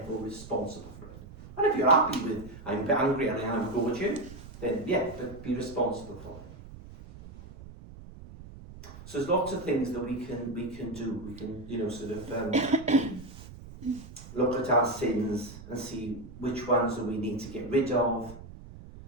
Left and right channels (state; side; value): noise; right; rumble, 16 dB below the sound